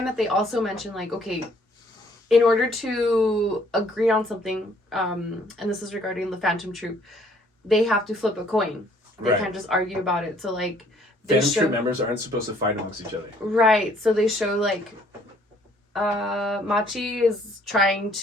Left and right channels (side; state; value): both; normal; correlation 0.62